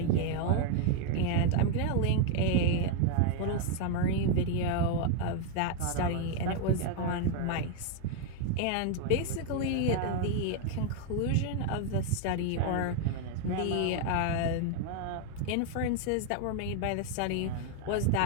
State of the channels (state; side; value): different; both; correlation 0.01